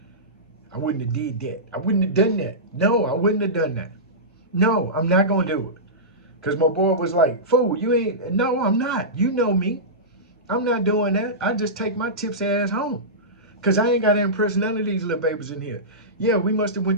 I wouldn't have did that. I wouldn't have done that. No, I wouldn't have done that. No, I'm not gonna do it. Cause my boy was like, "Fool, you ain't." No, I'm not. You know me. I'm not doing that. I just take my tips ass home. Cause I ain't got to impress none of these little babies in here. Yeah, we must have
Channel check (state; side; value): normal; both; correlation -0.17